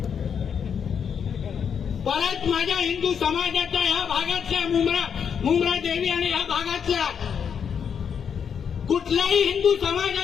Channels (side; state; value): right; quieter; 7.3 dB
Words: परत माझ्या हिंदू समाजाच्या ह्या भागातल्या मुंब्रा देवी आणि ह्या भागातल्या कुठल्याही हिंदू